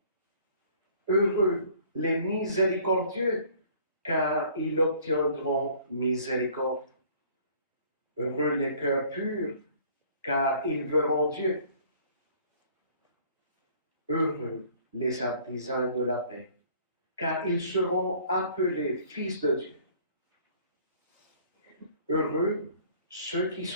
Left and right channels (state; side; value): inverted; both; correlation -0.55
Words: Heureux les miséricordieux, car ils obtiendront miséricorde. Heureux les cœurs purs, car ils verront Dieu. Heureux les artisans de la paix, car ils seront appelés fils de Dieu. Heureux ceux qui